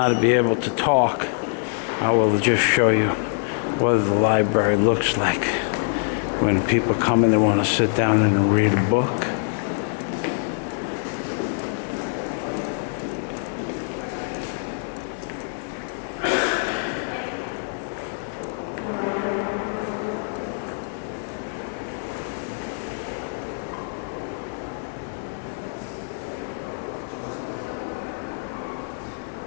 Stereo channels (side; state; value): right; silent; digital silence